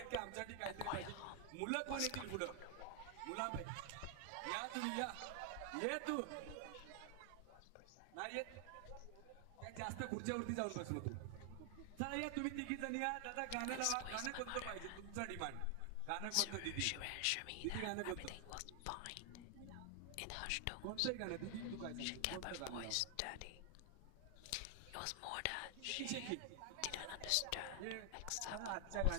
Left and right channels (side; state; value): both; different; correlation 0.00